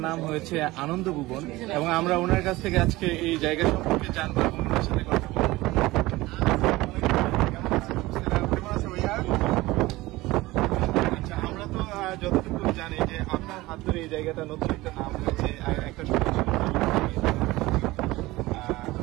নাম হয়েছে আনন্দ ভুবন। এবং আমরা ওনার কাছ থেকে আজকে এই জায়গা সম্পর্কে জানবো এবং ওনার সাথে কথা বলবো। আমরা তো যতটুকু জানি যে আপনার হাত ধরে এই জায়গাটা নতুন একটা নাম হয়েছে, একটা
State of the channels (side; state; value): left; quieter; 19.4 dB